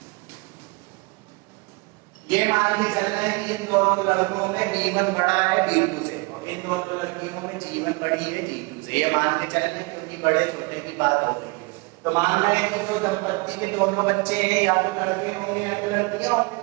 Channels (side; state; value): left; quieter; 28.7 dB